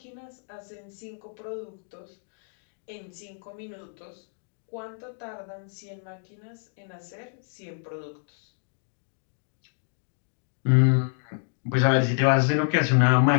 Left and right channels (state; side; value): silent; right; digital silence